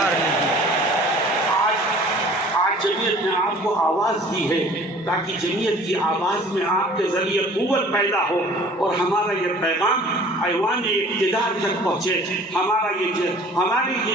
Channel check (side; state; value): both; normal; correlation 0.49